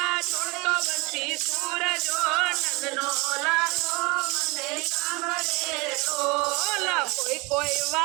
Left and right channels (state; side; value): quieter; left; 25.9 dB